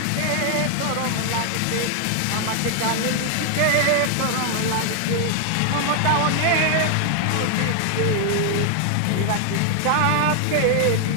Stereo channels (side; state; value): both; different; correlation 0.00